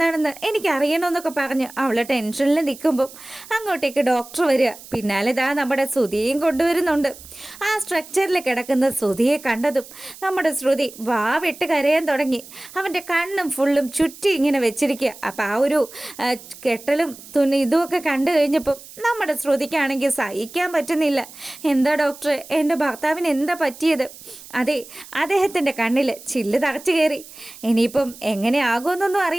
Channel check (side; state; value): right; noise; hiss, 18 dB below the sound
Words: എനിക്കറിയണമെന്നൊക്കെ പറഞ്ഞ് അവളെ ടെൻഷനിൽ നിൽക്കുമ്പം അങ്ങോട്ടേക്ക് ഡോക്ടർ വരിക. പിന്നാലെ നമ്മുടെ ശ്രുതിയെയും കൊണ്ടുവരുന്നുണ്ട്. ആ സ്ട്രക്ചറിൽ കിടക്കുന്ന ശ്രുതിയെ കണ്ടതും നമ്മുടെ ശ്രുതി വിട്ട് കരയാൻ തുടങ്ങി. അവൻ്റെ കണ്ണും ഫുള്ളും ചുറ്റി ഇങ്ങനെ വെച്ചിരിക്കുക. അപ്പം ആ ഒരു കെട്ടലും ഇതുമൊക്കെ കണ്ടു കഴിഞ്ഞപ്പം നമ്മുടെ ശ്രുതിക്കാണെങ്കിൽ സഹിക്കാൻ പറ്റുന്നില്ല. എന്താ ഡോക്ടറെ, എൻ്റെ ഭർത്താവിന് എന്താ പറ്റിയത്? അതെ, അദ്ദേഹത്തിൻ്റെ കണ്ണിൽ ചില്ല് തറച്ചു കയറി. ഇനിയിപ്പം എങ്ങനെയാകുമെന്നൊന്നും